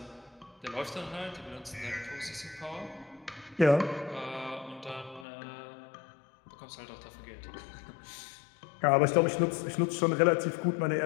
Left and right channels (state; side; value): drops out; right; at 5.2 s